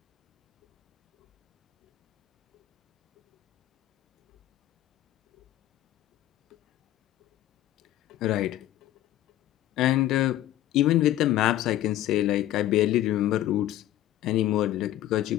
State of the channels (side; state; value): right; quieter; 13.8 dB